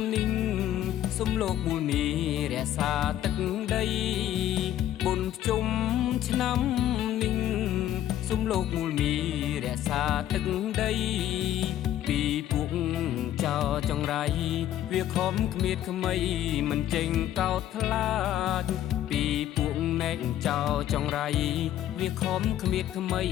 នេះសុំលោកមូលមីរក្សាទឹកដីបុណ្យជុំឆ្នាំនេះសុំលោកមូលមីរក្សាទឹកដីពីពួកចោចង្រៃវាខំគ្មៀតខ្មៃមិនចេញកោតខ្លាចពីពួកណែកចោចង្រៃវាខំគ្មៀតខ្មៃ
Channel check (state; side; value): quieter; right; 12.2 dB